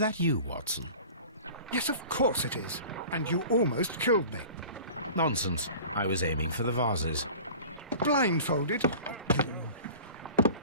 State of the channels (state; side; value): inverted; both; correlation -0.40